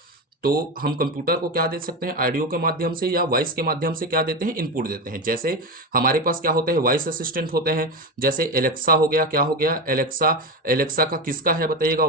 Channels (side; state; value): both; normal; correlation 0.18